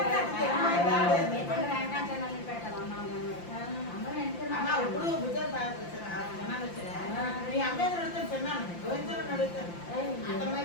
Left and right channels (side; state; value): right; late; 5.8 ms